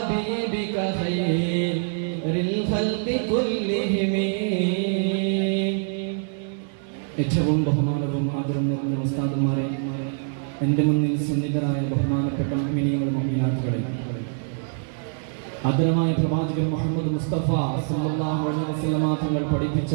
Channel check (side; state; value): left; silent; 62 dB below the other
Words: خير الخلق كلهم ഏറ്റവും ബഹുമാനവും ആദരവും നിറഞ്ഞ ഉസ്താദുമാരെ, എൻ്റെ മുന്നിൽ സന്നിധരായ ബഹുമാനപ്പെട്ട മുഅ്മിനീങ്ങളും മുഅ്മിനാത്തുകളെ, ആദരമായ പ്രവാചകൻ മുഹമ്മദ് മുസ്തഫ സല്ലല്ലാഹു അലൈഹി വസല്ലമ തങ്ങൾ